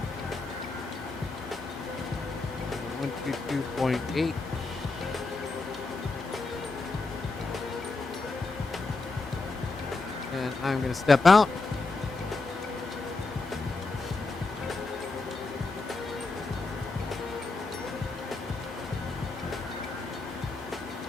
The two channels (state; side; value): quieter; right; 3.5 dB